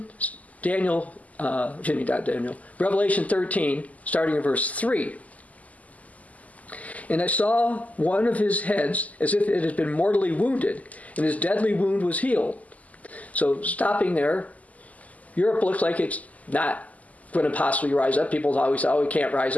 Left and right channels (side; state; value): right; late; 0.074 ms